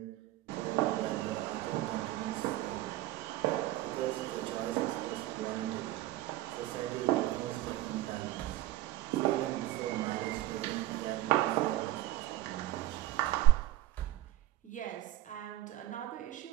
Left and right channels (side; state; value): left; quieter; 15.3 dB